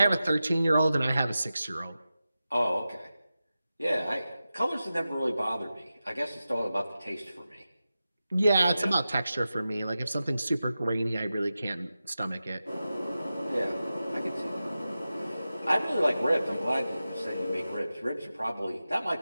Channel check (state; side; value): inverted; both; correlation -0.93